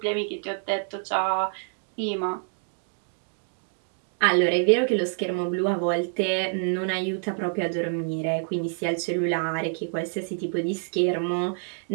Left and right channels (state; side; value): silent; left; 60 dB below the other